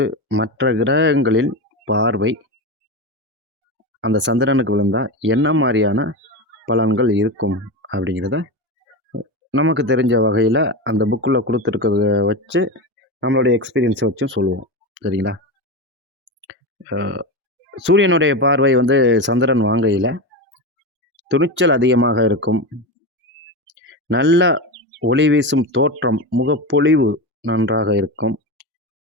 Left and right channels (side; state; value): both; normal; correlation 0.19